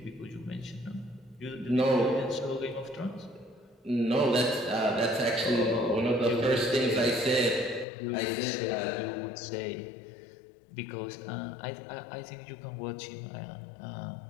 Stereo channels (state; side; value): drops out; right; at 7.9 s